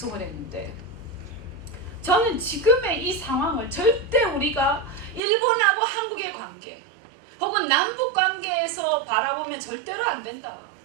했는데, 저는 지금의 이 상황을 절대 우리가 일본하고 한국의 관계 혹은 남북 관계에서 바라보면 절대로 안 된다.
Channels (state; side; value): drops out; left; at 5.2 s